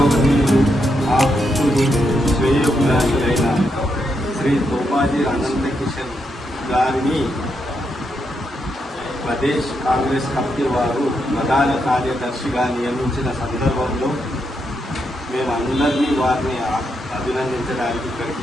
శ్రీ తోపాజీ అనంతకిషన్ గారిని ప్రదేశ్ కాంగ్రెస్ కమిటీ వారు ప్రధాన కార్యదర్శిగా నియమించిన సందర్భంలో మేమందరినీ వారిని అభినందించడానికి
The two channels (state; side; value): normal; both; correlation 0.81